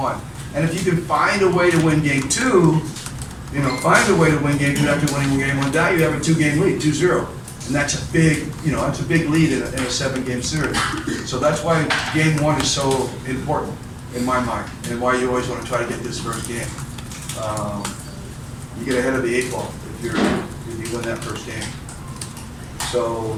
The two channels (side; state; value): both; identical; correlation 1.00